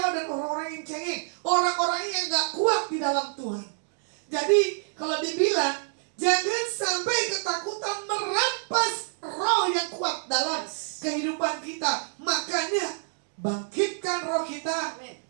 dan orang-orang yang cengeng, orang-orang yang gak kuat di dalam Tuhan. Jadi kalau dibilang, jangan sampai ketakutan merampas roh yang kuat dalam kehidupan kita. Makanya bangkitkan roh kita,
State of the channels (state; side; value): silent; left; 60 dB below the other